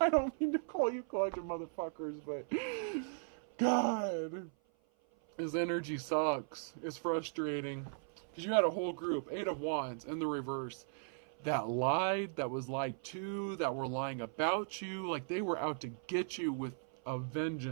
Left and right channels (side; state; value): left; silent; 53 dB below the other